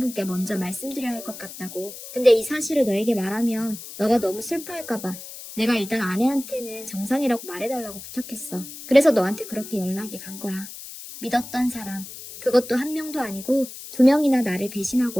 먼저 말씀드려야 할 것 같다고. 근데 이 사실을 너에게 말하면 너가 너무 슬퍼할까봐 내가 일단 아내한테는 정상이라고 말해달라고 부탁했어. 그래서 너한테 그렇게 연락이 간 거야. 믿었던 사람. 그것도 한 명도 아니고 2명이나 나를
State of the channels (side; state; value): left; noise; hiss, 13 dB below the sound